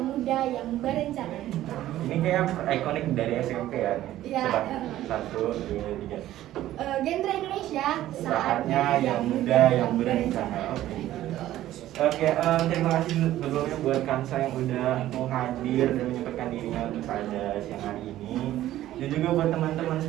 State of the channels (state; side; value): quieter; left; 13.9 dB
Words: muda yang berencana. Ini kayak ikonik dari SMP ya. Iya. Coba 1, 2, 3. Genre Indonesia. Saatnya yang muda yang berencana. Oke, terima kasih sebelumnya buat Kansa yang udah mau hadir dan menyempatkan dirinya untuk pada siang hari ini. Dan juga buat teman-teman